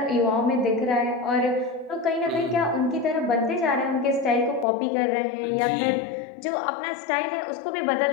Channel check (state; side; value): drops out; right; at 4.7 s